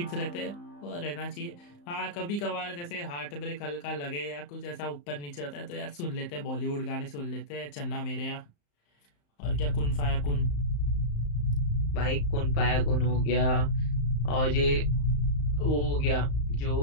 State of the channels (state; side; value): late; right; 35 ms